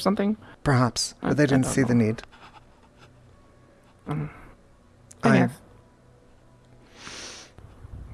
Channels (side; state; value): both; identical; correlation 1.00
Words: Perhaps, but they didn't see the need. I I guess.